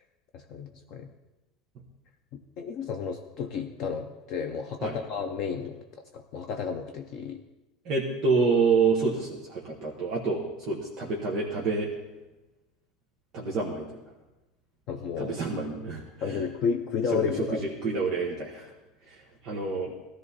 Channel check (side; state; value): both; normal; correlation 0.37